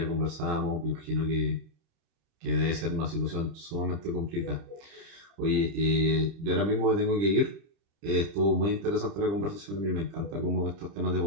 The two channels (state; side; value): late; left; 30 ms